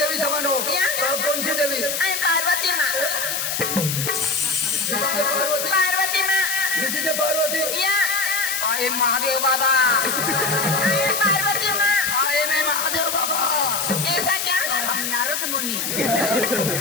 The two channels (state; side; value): noise; left; hiss, 1 dB below the sound